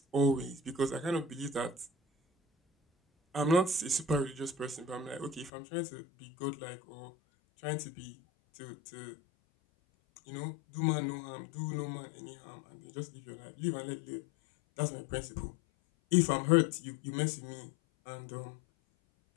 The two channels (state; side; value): drops out; right; at 5.5 s